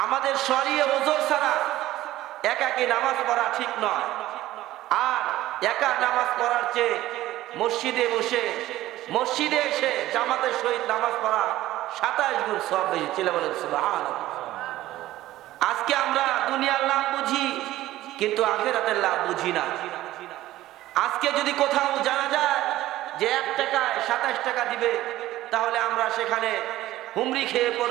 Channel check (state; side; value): quieter; left; 15.3 dB